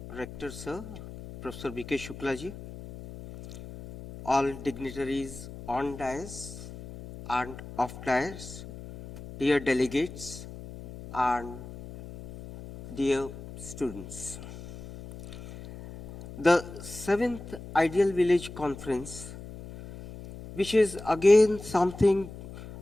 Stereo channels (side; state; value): left; noise; hum, 13 dB below the sound